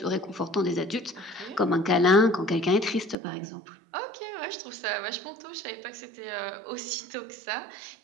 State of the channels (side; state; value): left; drops out; at 3.2 s